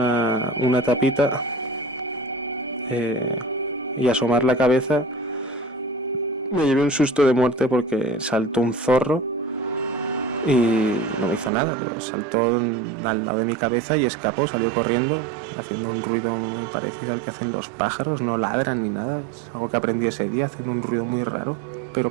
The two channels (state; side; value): drops out; left; at 11.5 s